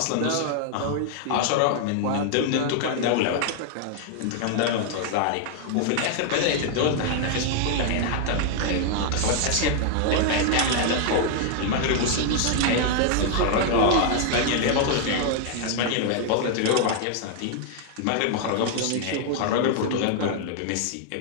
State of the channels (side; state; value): both; different; correlation 0.00